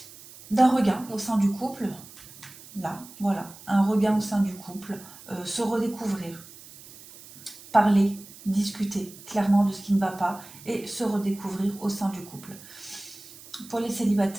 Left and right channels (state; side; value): noise; right; hiss, 19 dB below the sound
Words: d'un regain au sein du couple. Là, voilà, un regain au sein du couple, se redécouvrir, parler, discuter clairement de ce qui ne va pas et se redécouvrir au sein du couple. Pour les